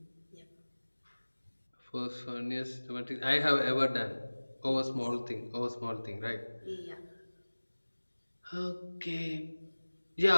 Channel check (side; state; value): both; inverted; correlation -1.00